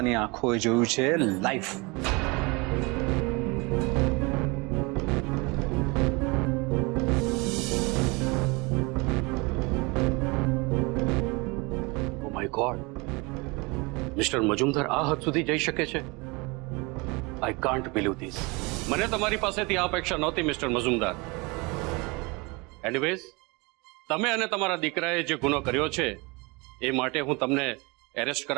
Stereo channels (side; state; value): left; quieter; 26.9 dB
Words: આંખોએ જોયું છે live. Oh my God, mister Majumdar આ હદ સુધી જઈ શકે છે? I can't believe this. મને તમારી પાસેથી આ અપેક્ષા નહોતી મિસ્ટર મજુમદાર. એનીવેઝ, તમે અને તમારા દીકરાએ જે ગુનો કર્યો છે એ માટે હું તમને એરેસ્ટ